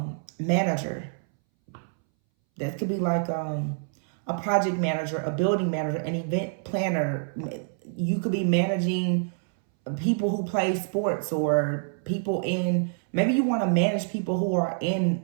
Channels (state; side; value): silent; left; 60 dB below the other